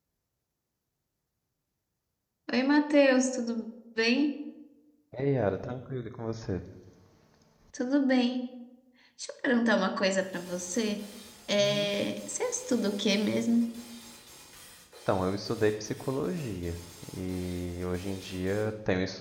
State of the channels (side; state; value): both; identical; correlation 1.00